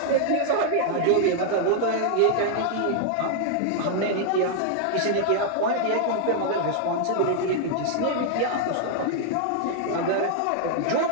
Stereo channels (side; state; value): both; different; correlation 0.00